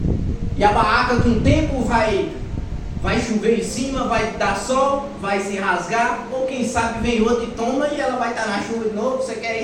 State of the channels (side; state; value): both; identical; correlation 1.00